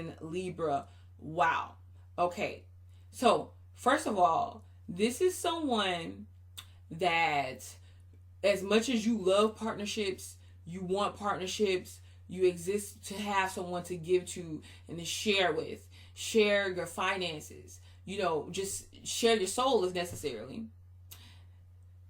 Libra. Wow. Okay. So, first of all, this is someone that, as much as you love partnerships, you want partnerships, you exist to have someone to give to and to share with, share your finances, just share your soul if necessarily.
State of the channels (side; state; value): both; identical; correlation 1.00